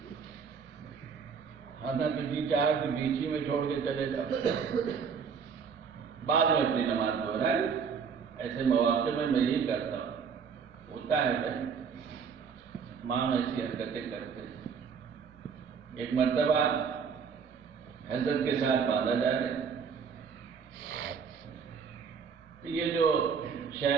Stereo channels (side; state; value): left; quieter; 6.3 dB